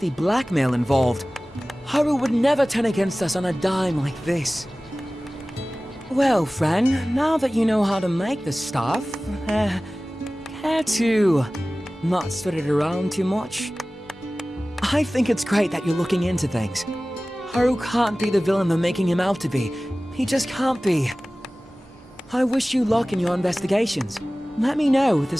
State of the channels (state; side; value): normal; both; correlation 0.97